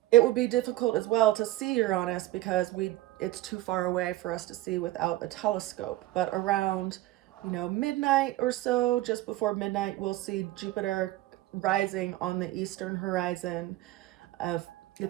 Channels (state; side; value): quieter; left; 16.6 dB